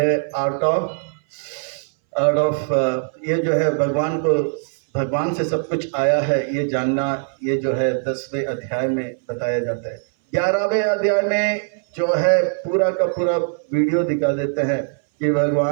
आर्ट ऑफ ये जो है भगवान को भगवान से सब कुछ आया है ये जानना, ये जो है 10वें अध्याय में बताया जाता है। 11वें अध्याय में जो है पूरा का पूरा वीडियो दिखा देते हैं कि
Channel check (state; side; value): silent; left; 62 dB below the other